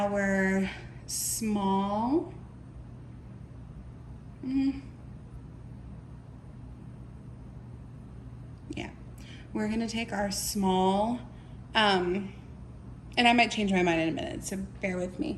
small, we're gonna take our small, and I might change my mind in a minute, so bear with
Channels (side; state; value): both; identical; correlation 1.00